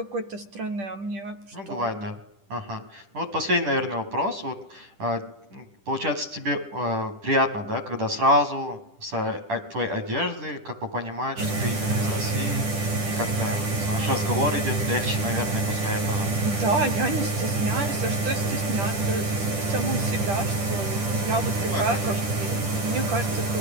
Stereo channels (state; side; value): late; left; 10 ms